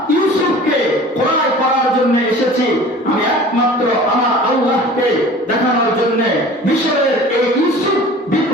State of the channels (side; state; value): both; normal; correlation 0.43